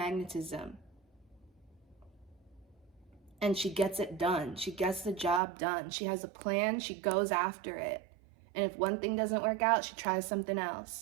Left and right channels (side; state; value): left; drops out; at 5.4 s